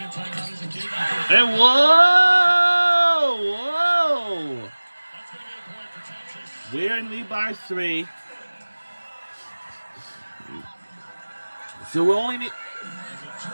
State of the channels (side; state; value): both; inverted; correlation -1.00